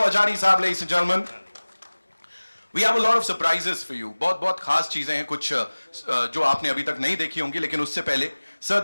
Ajani Saab, ladies and gentlemen. We have a lot of surprises for you. बहुत खास चीजें हैं, कुछ जो आपने अभी तक नहीं देखी होंगी, लेकिन उससे पहले, sir,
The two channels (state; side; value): inverted; both; correlation -1.00